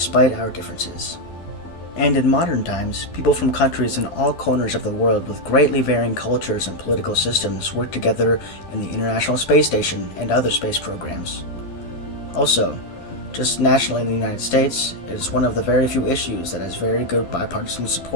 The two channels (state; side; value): late; right; 12 ms